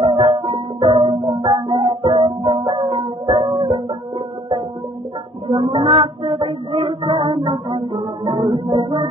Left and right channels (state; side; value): normal; both; correlation 0.59